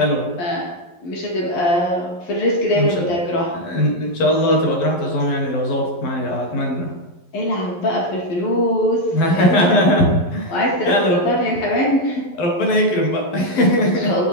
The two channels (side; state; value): right; late; 11 ms